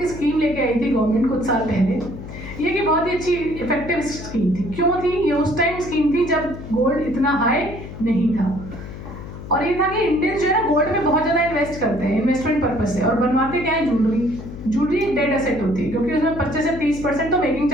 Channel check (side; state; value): left; noise; hum, 12 dB below the sound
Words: स्कीम लेके आई थी गवर्नमेंट कुछ साल पहले। ये कि बहुत ही अच्छी इफेक्टिव स्कीम थी। क्यों थी? ये उस टाइम स्कीम थी जब गोल्ड इतना हाई नहीं था और ये था कि इंडियंस जो है ना गोल्ड में बहुत ज़्यादा इन्वेस्ट करते हैं इन्वेस्टमेंट पर्पज से और बनवाते क्या है? ज्वेलरी एक डेड एसेट होती है क्योंकि उसमें 25 से 30% तो मेकिंग